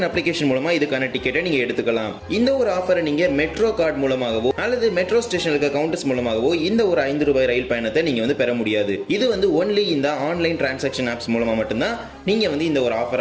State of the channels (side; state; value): both; identical; correlation 1.00